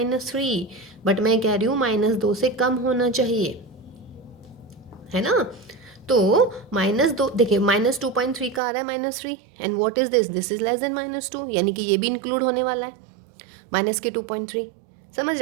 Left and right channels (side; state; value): left; drops out; at 8.6 s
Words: बट मैं कह रही हूँ -2 से कम होना चाहिए, है ना? तो -2 देखिए -2.3 का आ रहा है -3 and what is this is less than -2 यानी कि ये भी इंक्लूड होने वाला है -2.3। समझ